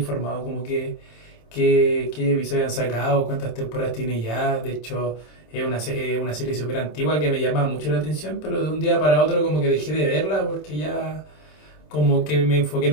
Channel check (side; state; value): right; late; 27 ms